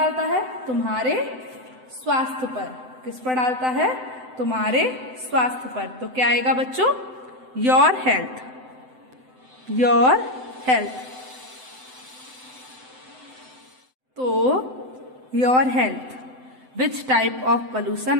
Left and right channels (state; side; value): late; left; 7.8 ms